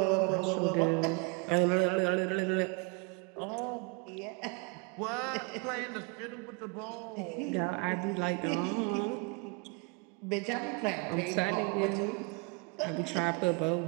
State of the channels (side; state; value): left; quieter; 31.1 dB